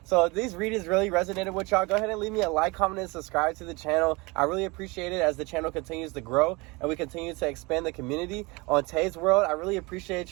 So if these readings really resonated with y'all, go ahead and leave me a like, comment, and subscribe to the channel. I really appreciate it as the channel continues to grow and we continue to expand the community on Tay's World. I really appreciate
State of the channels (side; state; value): left; quieter; 25.5 dB